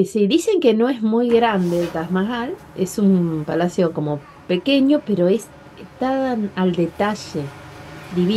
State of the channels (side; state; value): both; identical; correlation 1.00